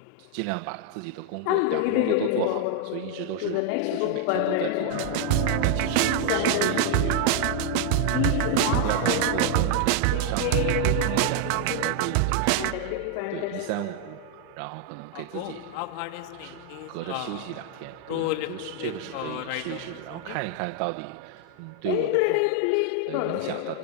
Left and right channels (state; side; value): different; both; correlation 0.00